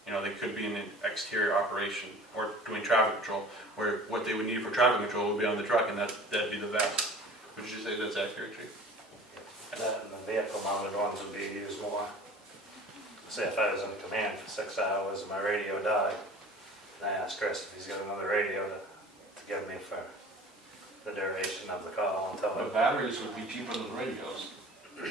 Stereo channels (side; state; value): both; normal; correlation 0.43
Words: You know, they could be in an exterior operation or doing traffic control, where what they would need for traffic control would be on the truck, and that'd be the vest. Would you say that's accurate, Chief? That and the vehicle mounted ones would be used more. Say if I was in command for 6 hours and my radio died, and I asked Chris if he's got another radio to give me for the duration of the call until But batteries would be cheaper than radios.